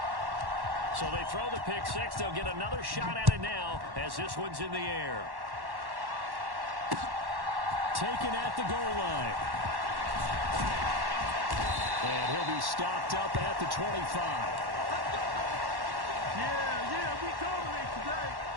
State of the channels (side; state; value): left; late; 1.1 ms